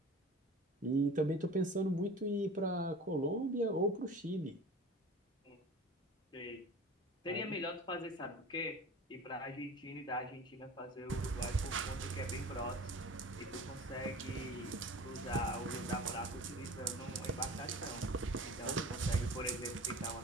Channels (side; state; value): both; normal; correlation 0.39